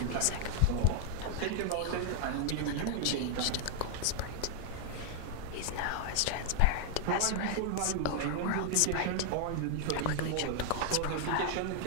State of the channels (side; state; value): both; different; correlation 0.00